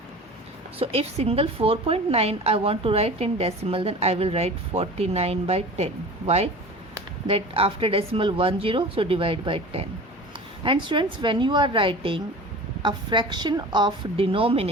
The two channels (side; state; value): both; normal; correlation 0.37